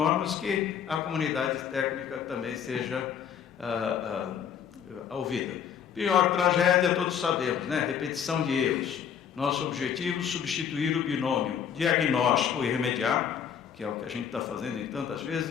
que a comunidade técnica também seja ouvida. Pior tragédia, todos sabemos, né? Repetição de erros. Nosso objetivo, substituir o binômio diagnóstico e remediar, que é o que a gente está fazendo em tantas vezes,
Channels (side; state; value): right; quieter; 8.2 dB